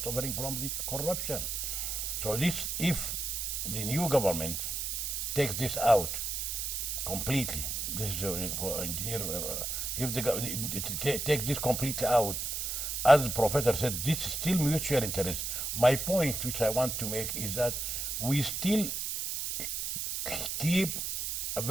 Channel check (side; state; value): right; noise; hiss, 2 dB below the sound